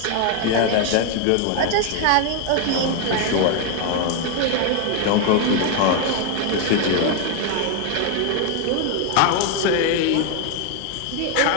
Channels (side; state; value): both; different; correlation 0.01